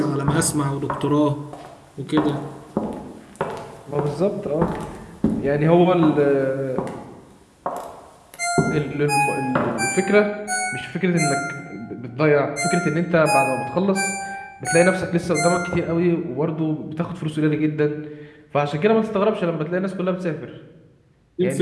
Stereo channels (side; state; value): both; identical; correlation 1.00